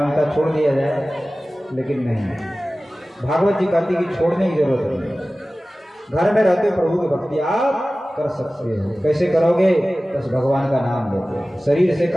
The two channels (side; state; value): both; normal; correlation 0.97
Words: छोड़ दिया जाए, लेकिन नहीं। भागवत जी कहती कि छोड़ने की जरूरत नहीं। घर में रहते प्रभु की भक्ति आप कर सकते हो। कैसे करोगे? बस भगवान का नाम लेते। शरीर से